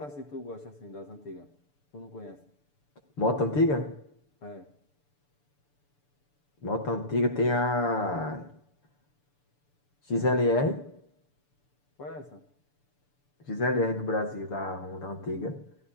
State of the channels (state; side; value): late; right; 6.9 ms